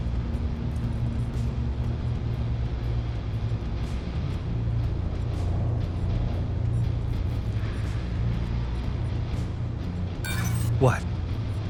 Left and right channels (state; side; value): identical; both; correlation 1.00